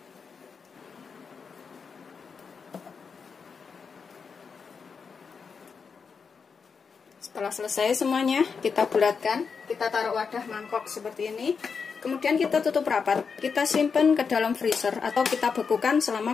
Setelah selesai semuanya, kita bulatkan, kita taruh wadah mangkok seperti ini. Kemudian kita tutup rapat, kita simpan ke dalam freezer atau kita bekukan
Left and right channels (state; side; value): quieter; right; 5.6 dB